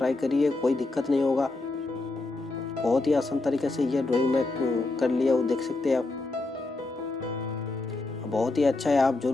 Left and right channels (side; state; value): right; quieter; 3.2 dB